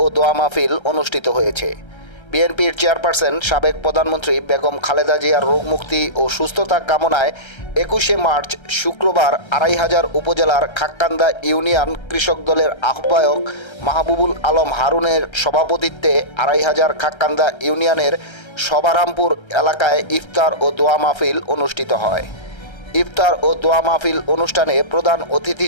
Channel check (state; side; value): late; right; 1.3 ms